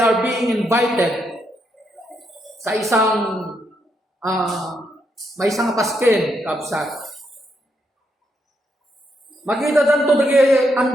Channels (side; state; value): both; normal; correlation 0.79